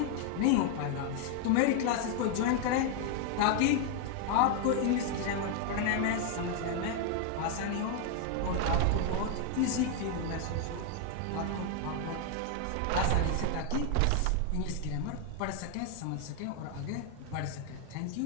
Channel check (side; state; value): both; different; correlation 0.00